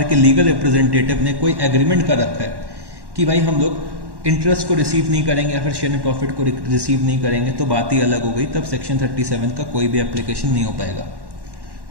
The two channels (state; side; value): late; left; 1.1 ms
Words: के लीगल रिप्रेजेंटेटिव ने कोई एग्रीमेंट कर रखा है कि भाई हम लोग इंटरेस्ट को रिसीव नहीं करेंगे या फिर शेयर इन प्रॉफिट को रिसीव नहीं करेंगे, तो बात ही अलग हो गई। तब सेक्शन 37 का कोई भी एप्लीकेशन नहीं हो पाएगा।